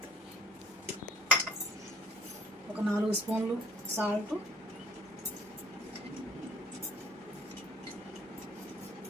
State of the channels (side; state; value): both; normal; correlation 0.57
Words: ఒక 4 స్పూన్లు సాల్ట్,